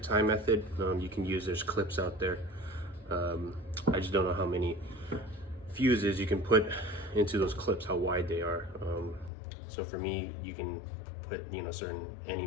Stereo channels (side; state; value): right; drops out; at 9.3 s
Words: tie method. You can use, there's clips out there. I just don't know how many fuses you can put into those clips, how wide they are. So for me, you can put any